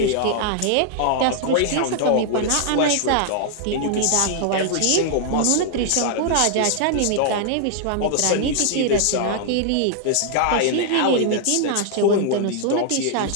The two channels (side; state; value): both; different; correlation 0.00